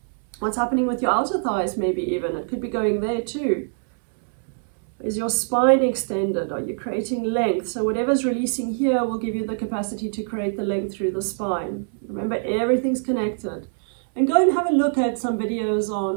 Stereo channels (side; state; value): left; silent; digital silence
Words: What's happening with your outer thighs maybe even. It could be going there too. Is your spine extended? Are you creating length? So whatever's releasing here will give you the capacity to create the length through the spine. Remember, everything's connected. And go and have a look at some videos